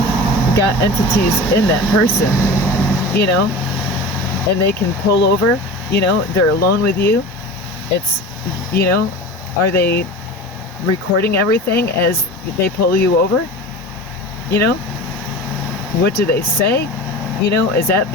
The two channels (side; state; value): both; normal; correlation 0.34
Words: got entities in that person, and they can pull over, they're alone with you. It's, are they recording everything as they pull you over? What do they say? Is that